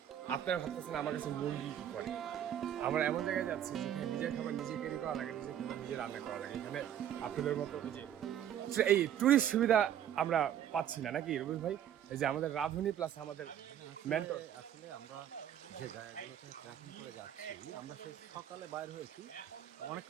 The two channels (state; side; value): quieter; left; 10.3 dB